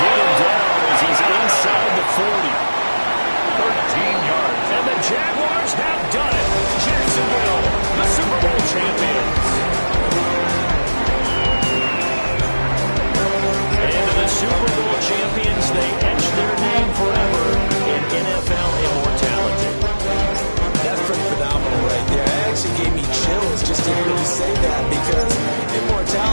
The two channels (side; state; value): both; inverted; correlation -1.00